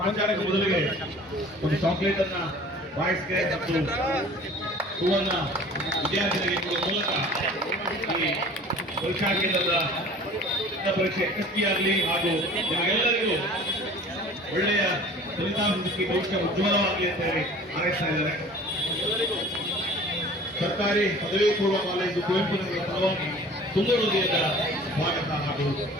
ಮೊದಲಿಗೆ ಒಂದು ಚಾಕ್ಲೇಟ್ ಅನ್ನ ಬಾಯ್ಸ್ಗೆ ಮತ್ತು ಹೂವನ್ನ ವಿದ್ಯಾರ್ಥಿಗಳಿಗೆ ಕೊಡುವ ಮೂಲಕ ಈ ಪರೀಕ್ಷಾ ಕೇಂದ್ರದ ಪರೀಕ್ಷೆ ಯಶಸ್ವಿಯಾಗಲಿ ಹಾಗೂ ನಿಮಗೆಲ್ಲರಿಗೂ ಒಳ್ಳೆಯ ಫಲಿತಾಂಶ ಸಿಕ್ಕಿ ಭವಿಷ್ಯ ಉಜ್ವಲವಾಗಲಿ ಅಂತ ಹೇಳಿ ಹಾರೈಸ್ತಾ ಇದ್ದಾರೆ. ಸರ್ಕಾರಿ ಪದವಿ ಪೂರ್ವ ಕಾಲೇಜು ಕುವೆಂಪು ನಗರ ಪರವಾಗಿ ತುಂಬ ಹೃದಯದ ಸ್ವಾಗತ ಹಾಗೂ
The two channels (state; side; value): normal; both; correlation 0.45